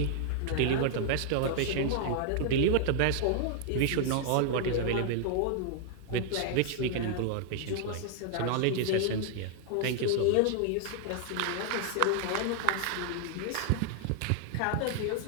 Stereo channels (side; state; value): both; different; correlation 0.00